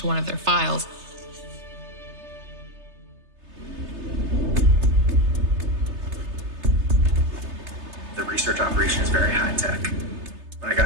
one of their files. The research operation is very high tech. When I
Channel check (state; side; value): late; left; 3.3 ms